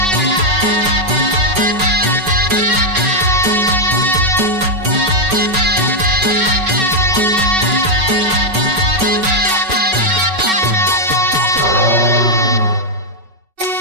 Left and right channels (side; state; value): left; late; 5.3 ms